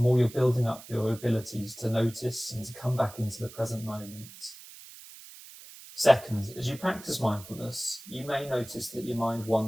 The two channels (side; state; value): right; noise; hiss, 17 dB below the sound